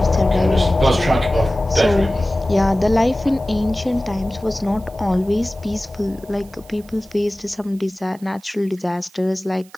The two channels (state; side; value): noise; right; hiss, 27 dB below the sound